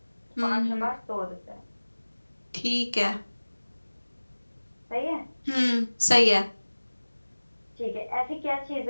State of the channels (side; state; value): both; inverted; correlation -1.00